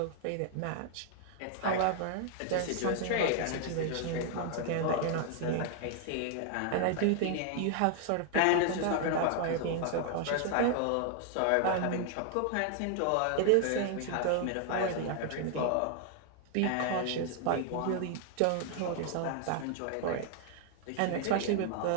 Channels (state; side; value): different; both; correlation 0.00